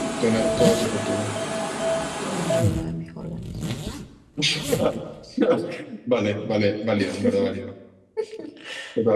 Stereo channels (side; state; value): both; identical; correlation 1.00